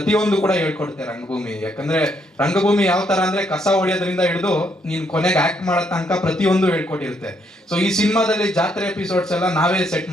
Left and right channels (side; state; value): both; normal; correlation 0.73